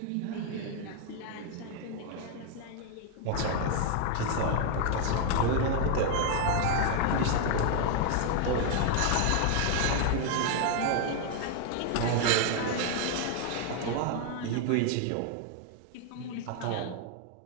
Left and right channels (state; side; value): different; both; correlation 0.00